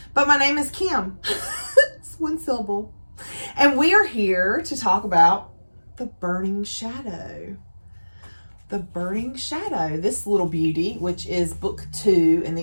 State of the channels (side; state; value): both; inverted; correlation -1.00